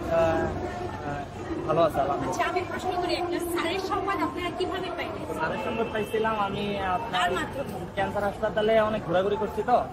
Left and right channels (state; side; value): identical; both; correlation 1.00